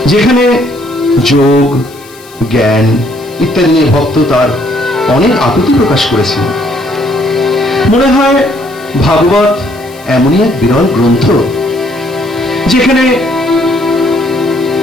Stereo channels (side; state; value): left; noise; hiss, 23 dB below the sound